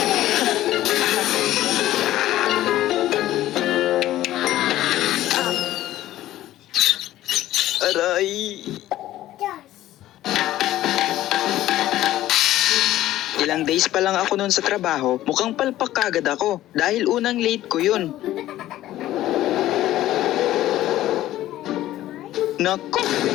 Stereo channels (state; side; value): quieter; right; 14.3 dB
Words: Aray! Ilang days pa lang ako noon sa trabaho, mukhang palpak kagad ako dahil unang late ko yun. Nako,